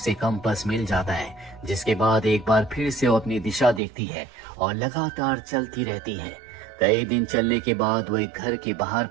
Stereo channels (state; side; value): drops out; left; at 3.8 s